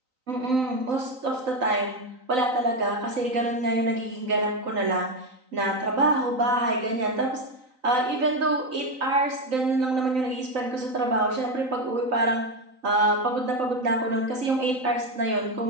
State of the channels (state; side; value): late; left; 3.9 ms